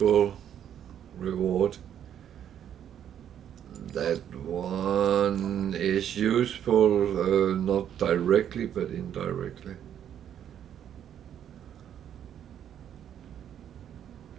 reward. That one is useful, not directly but indirectly.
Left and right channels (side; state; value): left; quieter; 9.7 dB